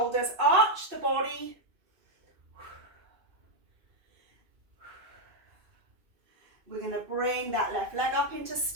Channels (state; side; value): late; left; 2.6 ms